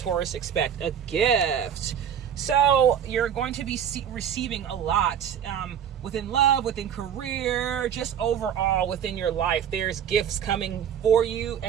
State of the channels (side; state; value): left; quieter; 8.8 dB